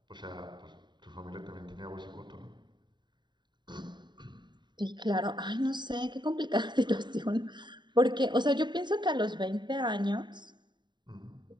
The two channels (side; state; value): left; late; 0.22 ms